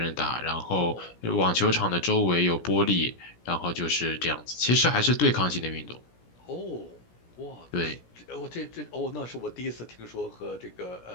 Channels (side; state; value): right; late; 17 ms